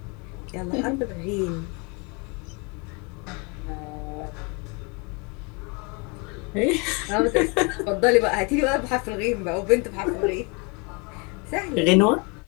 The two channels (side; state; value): right; quieter; 31.4 dB